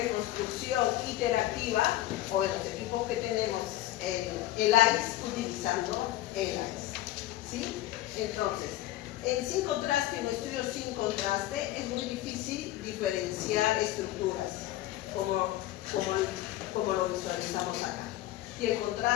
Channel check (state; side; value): quieter; right; 15.3 dB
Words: iterativa, o en los equipos que tenemos el ICE, utilizando el ICE, ¿sí? Entonces, sin contraste, en estudios sin contraste, es muy difícil diferenciar estructuras, como lo visualizamos acá. Y el